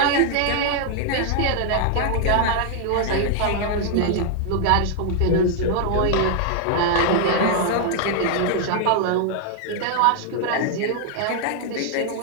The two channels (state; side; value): different; both; correlation 0.00